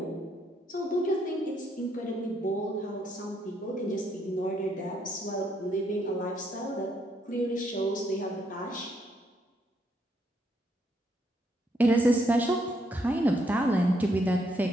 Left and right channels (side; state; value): both; normal; correlation 0.74